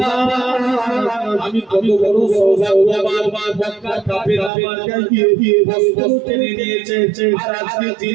আমি কত বড় সওগাত মক্কা কাফের আমার গায়ে দিয়ে বস্ত্র টেনে নিয়েছে আর আজকের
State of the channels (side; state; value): left; drops out; at 4.5 s